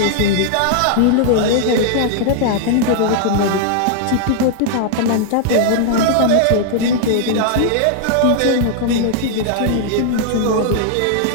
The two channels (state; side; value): different; both; correlation -0.01